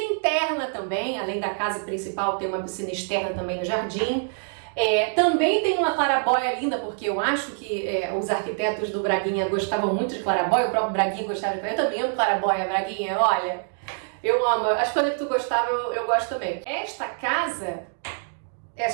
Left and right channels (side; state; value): left; silent; digital silence